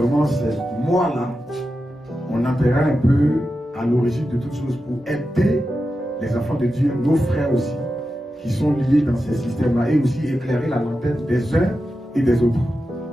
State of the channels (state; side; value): normal; both; correlation 0.91